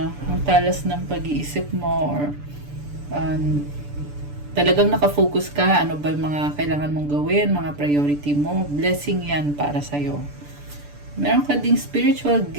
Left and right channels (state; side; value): late; left; 6.9 ms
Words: ang talas ng pag-iisip mo or talagang nakafocus ka, ano ba yung mga kailangan mong gawin, mga priority mo, blessing yan para sa'yo. Meron ka ding spiritual